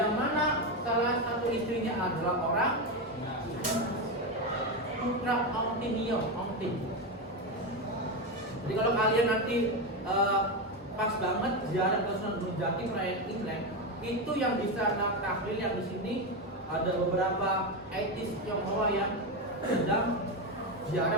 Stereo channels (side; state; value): both; normal; correlation 0.12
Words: mana salah satu istrinya adalah orang putra Ongting. Jadi kalau kalian nanti pas banget ziarah ke Sunan Gunung Jati perayaan Imlek, itu yang bisa tahlil yang di sini ada beberapa etis Tionghoa yang sedang